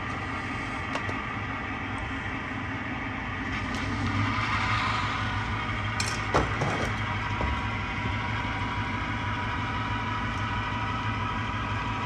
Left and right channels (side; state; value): both; identical; correlation 1.00